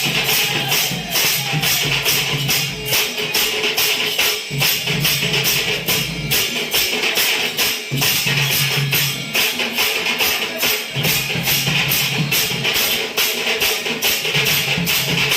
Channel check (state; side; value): identical; both; correlation 1.00